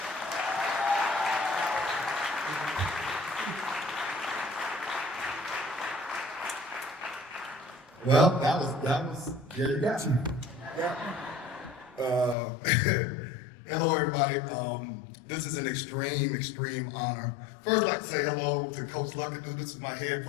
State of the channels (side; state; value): right; drops out; at 12.4 s